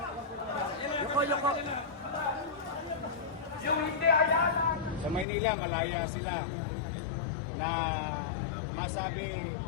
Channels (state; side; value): drops out; right; at 5.2 s